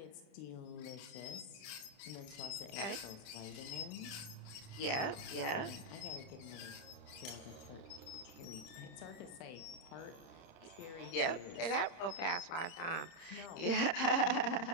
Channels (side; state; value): right; late; 30 ms